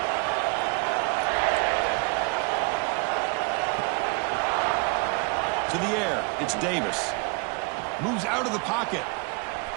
To the air, it's Davis. Moves out of the pocket.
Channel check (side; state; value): left; quieter; 31.7 dB